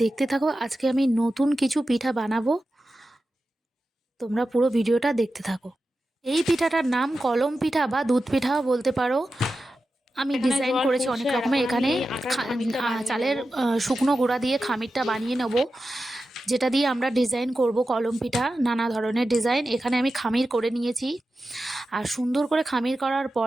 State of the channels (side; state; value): both; normal; correlation 0.92